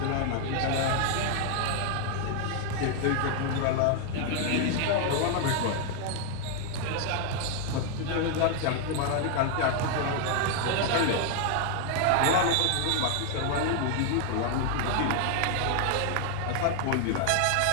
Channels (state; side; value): different; both; correlation 0.00